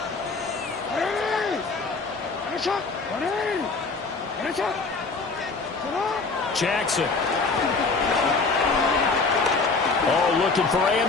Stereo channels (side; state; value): right; quieter; 4.1 dB